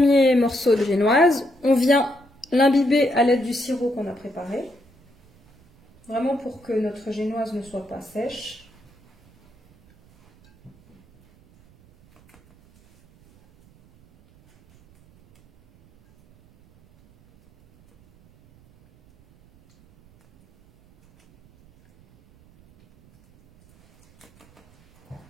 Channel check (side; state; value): right; noise; rumble, 29 dB below the sound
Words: morceau de génoise, on vient l'imbiber à l'aide du sirop qu'on a préparé. Vraiment pour que notre génoise ne soit pas sèche.